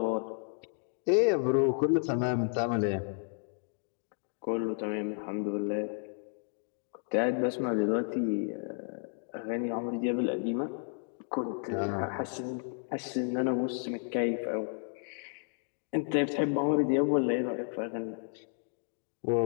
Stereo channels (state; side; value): silent; right; 56 dB below the other